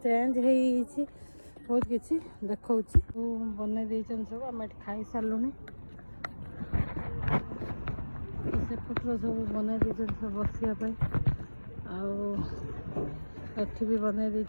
हो बहुत किसी देखा बनई दे सब आम खाई सारू सेपटर सब बनई दे सब बसापी आठ भी बनई दे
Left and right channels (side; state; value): both; inverted; correlation -1.00